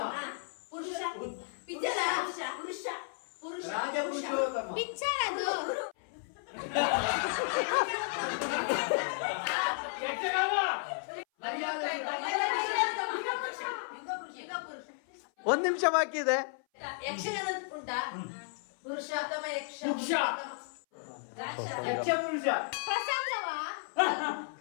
ಪಿಕ್ಚರ್ ಅದು. ಒಂದ್ ನಿಮಿಷ ಬಾಕಿ ಇದೆ. ಯಕ್ಷಗಾನ ಉಂಟಾ? ಪುರುಷೋತ್ತಮ ಯಕ್ಷ ಪುರುಷ ಪ್ರಸಂಗವಾ?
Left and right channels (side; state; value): right; silent; 55 dB below the other